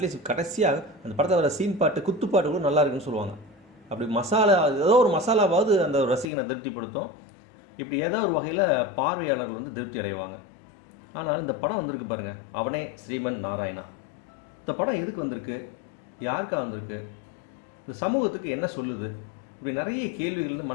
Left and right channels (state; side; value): drops out; right; at 6.3 s